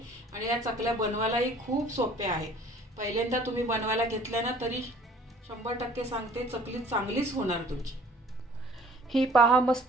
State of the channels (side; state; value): both; normal; correlation 0.52